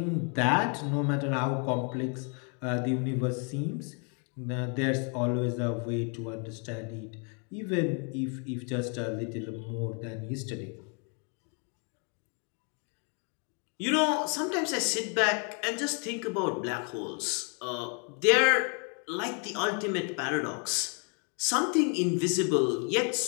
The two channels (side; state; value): right; quieter; 38.6 dB